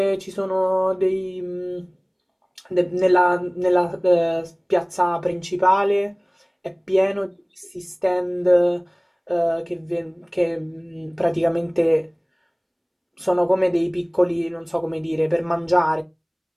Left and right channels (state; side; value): identical; both; correlation 1.00